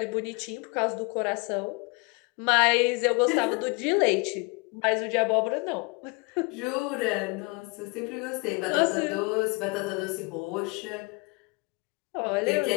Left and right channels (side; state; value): right; quieter; 30.4 dB